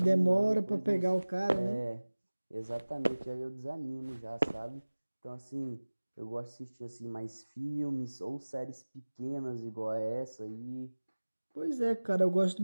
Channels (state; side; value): inverted; both; correlation -1.00